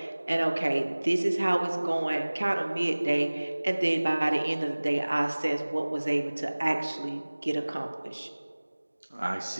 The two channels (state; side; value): inverted; both; correlation -1.00